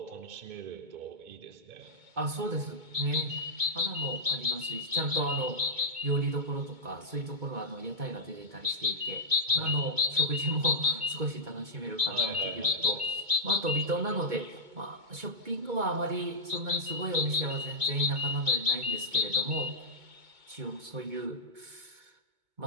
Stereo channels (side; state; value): left; late; 2.2 ms